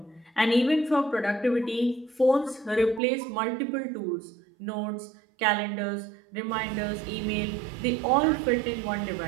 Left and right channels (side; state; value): left; drops out; at 3.0 s